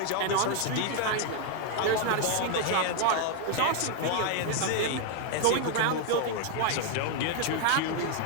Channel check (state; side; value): different; both; correlation 0.00